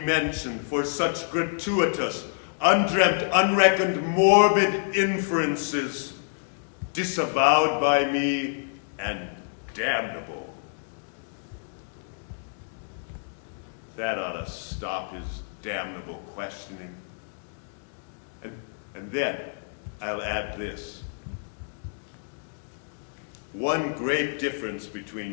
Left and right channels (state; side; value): silent; right; digital silence